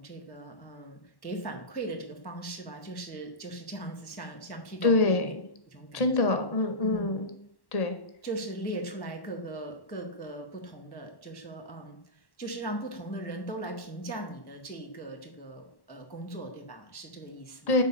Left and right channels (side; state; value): right; late; 1.1 ms